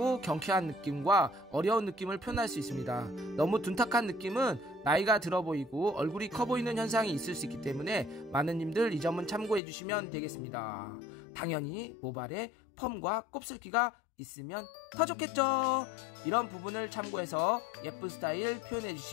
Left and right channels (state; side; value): drops out; right; at 9.6 s